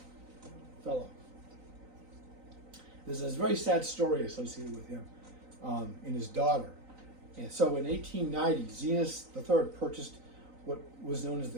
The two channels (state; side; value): late; left; 3.9 ms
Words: fellow. There's a very sad story associated with him and his daughter. And so in 1890, Zenas III purchased what was known as